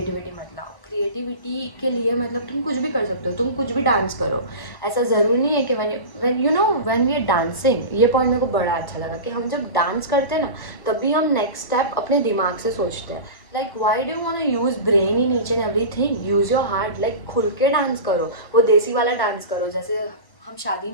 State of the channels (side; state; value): right; late; 1.1 ms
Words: मत लाओ। क्रिएटिविटी के लिए मतलब तुम कुछ भी कर सकते हो, तुम कुछ भी डांस करो। ऐसा ज़रूरी नहीं है कि when you know when we are dancing, ये पॉइंट मेरे को बड़ा अच्छा लगा कि हम जब डांस करते हैं ना, तभी हम नेक्स्ट स्टेप अपने दिमाग से सोचते हैं। Like why do want to use brain in each and everything, use your heart. Like खुल के डांस करो, वो देसी वाला डांस करो जैसे हम शादी